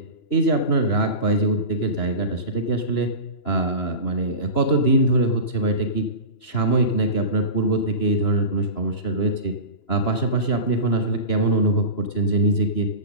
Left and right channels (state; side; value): late; right; 2.9 ms